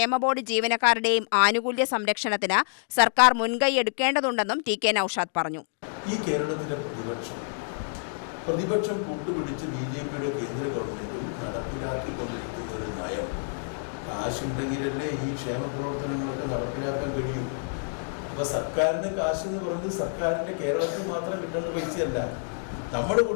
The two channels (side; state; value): right; silent; digital silence